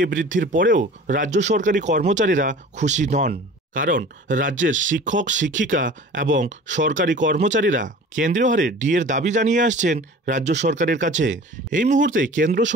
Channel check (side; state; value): both; normal; correlation 0.42